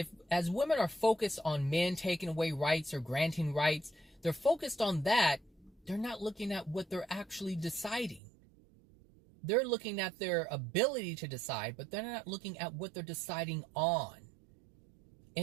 women are focused on men taking away rights or granting rights, they're focused on that. They're not looking at what they're actually deciding. They're looking at their ability to decide, but they're not looking at what they're deciding on.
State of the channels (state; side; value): drops out; left; at 8.2 s